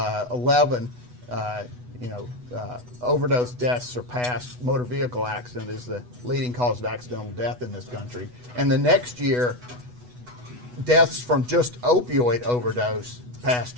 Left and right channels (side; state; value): left; late; 8.1 ms